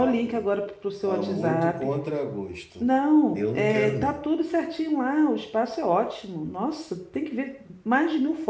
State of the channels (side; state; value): both; identical; correlation 1.00